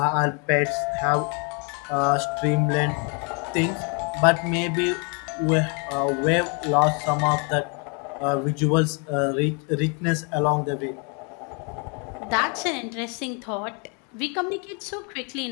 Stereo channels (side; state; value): right; quieter; 35.2 dB